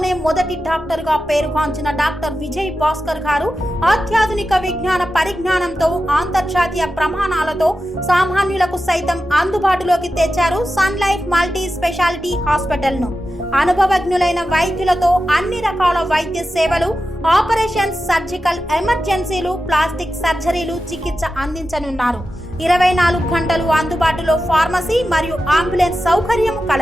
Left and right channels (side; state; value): both; normal; correlation 0.92